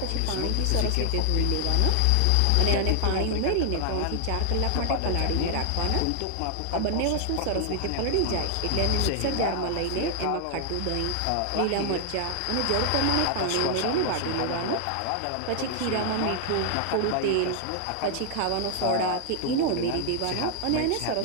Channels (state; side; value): different; both; correlation 0.00